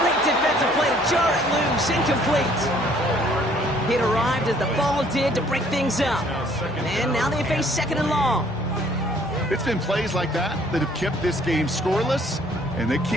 defensive play to jar it loose. Incomplete. It arrived as the ball did to break things up. And now they face 2nd and long. It's been plays like that that have kept this game scoreless, and they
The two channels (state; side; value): noise; left; hum, 23 dB below the sound